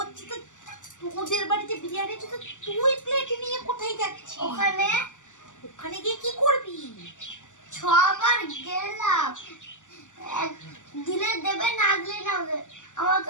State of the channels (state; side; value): late; right; 0.86 ms